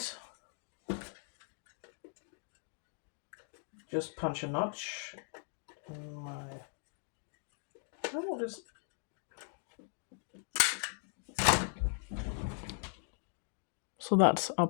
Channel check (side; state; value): right; silent; 52 dB below the other